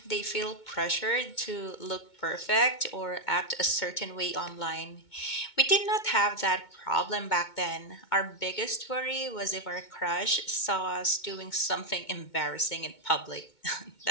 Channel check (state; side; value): late; right; 2.2 ms